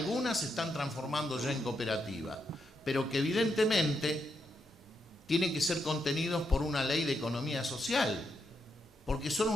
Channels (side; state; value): both; normal; correlation 0.82